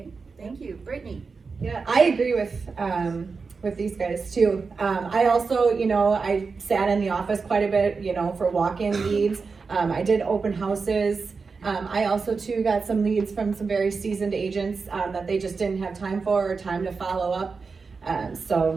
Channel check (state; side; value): quieter; left; 4.7 dB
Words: thank you. Brittney? Yeah, I agree with these guys too. I also, I sat in the office quite a bit, for walk-in leads. I did open houses. I also too got some leads from some very seasoned agents that they just didn't have time for or time to follow up.